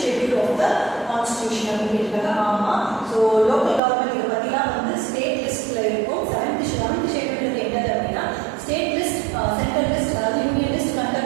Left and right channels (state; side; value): drops out; left; at 3.8 s